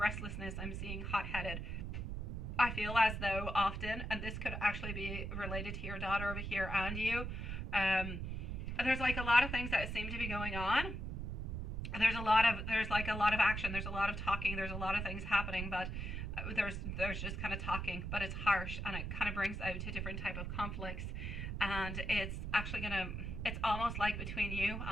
I'm seeing hot-headed. I feel as though often, and this could actually be related to your daughter over here and you, there's like a lot of things that seem to be going on. There's like a lot of action, there's a lot of talking, there's a lot of things happening, but there's just kind of talking, but it's harsh and it kind of brings out to different type of conflicts. And it's actually it's almost like between you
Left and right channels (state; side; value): noise; right; rumble, 4 dB below the sound